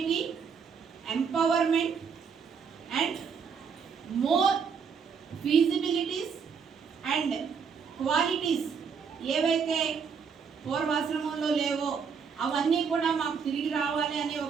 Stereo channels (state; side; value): quieter; left; 6.2 dB